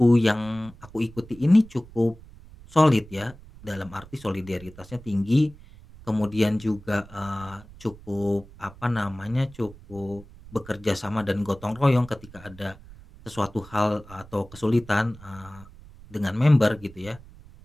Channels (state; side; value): noise; right; rumble, 20 dB below the sound